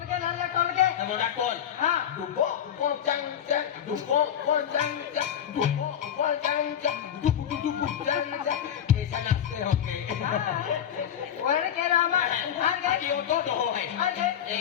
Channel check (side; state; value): right; quieter; 9.6 dB